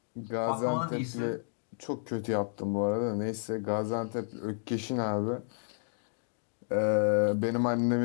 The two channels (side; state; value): right; silent; digital silence